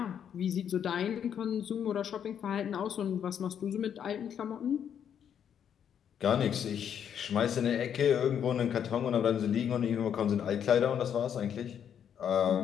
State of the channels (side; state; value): right; quieter; 8.6 dB